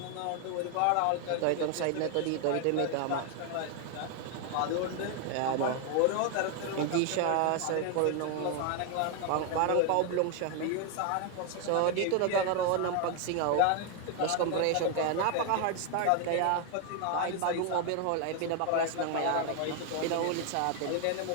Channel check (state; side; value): different; both; correlation 0.01